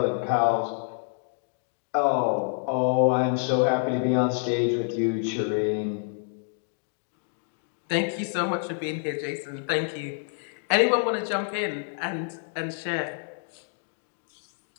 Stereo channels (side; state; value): right; silent; digital silence